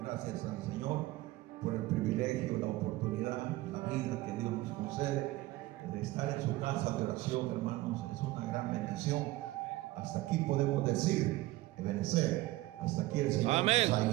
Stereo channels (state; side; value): quieter; left; 18.1 dB